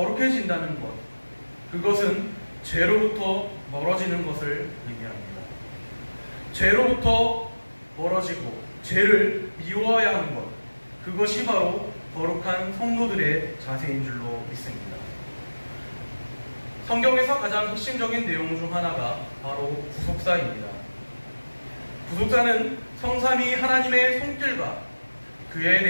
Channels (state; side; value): inverted; both; correlation -1.00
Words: 것, 그것은 죄로부터 멀어지는 것을 의미합니다. 죄로부터 멀어지고 죄를 미워해야 하는 것, 그것이 바로 거룩한 성도들의 자세인 줄로 믿습니다. 성경에서 가장 핵심적인 내용 중 하나가 바로 구속사입니다. 구속사는 성삼위 하나님의 손길과 그에